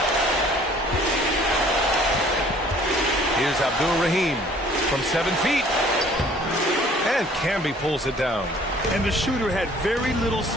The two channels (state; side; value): normal; both; correlation 0.55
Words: Here's Abdul Rahim from 7 feet. And Camby pulls it down. And the shooter had very little